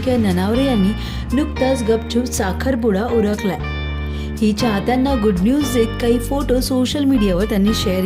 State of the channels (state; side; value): identical; both; correlation 1.00